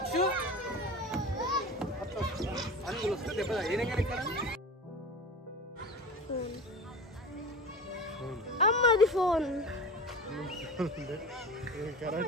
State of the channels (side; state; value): both; normal; correlation 0.32